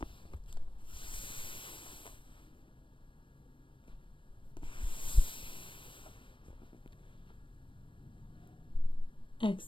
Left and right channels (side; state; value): right; late; 0.25 ms